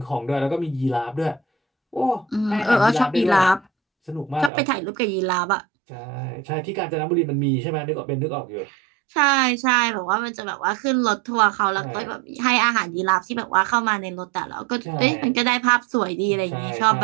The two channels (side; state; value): left; drops out; at 4.5 s